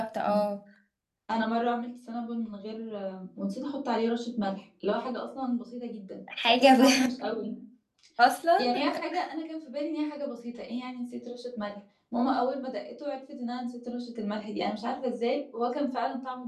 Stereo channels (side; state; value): both; identical; correlation 1.00